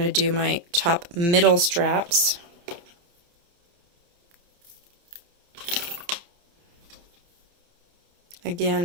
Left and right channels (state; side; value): late; left; 29 ms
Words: to do my top middle straps.